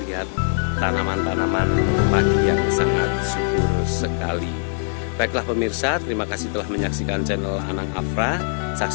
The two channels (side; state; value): right; silent; 64 dB below the other